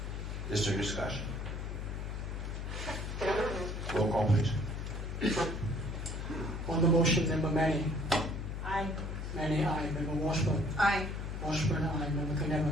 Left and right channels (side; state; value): left; noise; hum, 5 dB below the sound